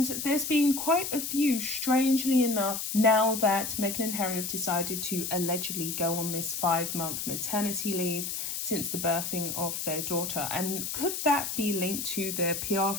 there's been quite a few, strangely enough, now that Meghan and Harry have decided to allegedly go on this 5-month maternity leave since the birthing of their daughter. And could that be linked to their PR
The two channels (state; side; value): noise; left; hiss, 4 dB below the sound